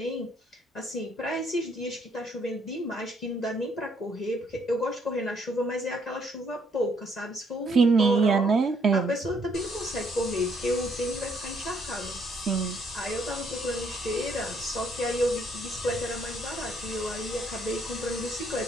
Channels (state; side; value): normal; both; correlation 0.68